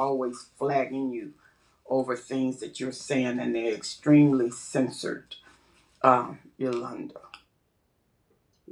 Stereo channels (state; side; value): identical; both; correlation 1.00